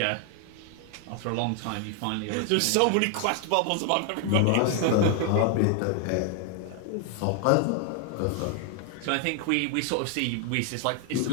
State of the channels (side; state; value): both; different; correlation 0.00